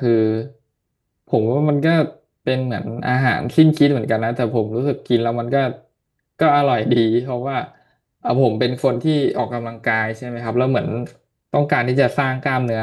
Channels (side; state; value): both; identical; correlation 1.00